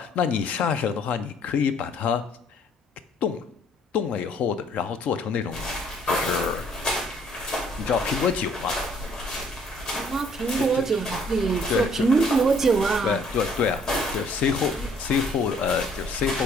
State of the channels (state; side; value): normal; both; correlation 0.61